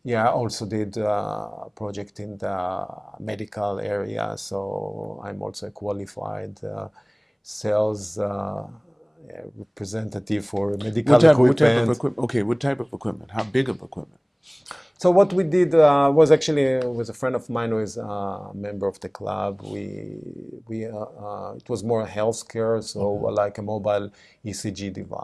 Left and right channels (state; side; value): identical; both; correlation 1.00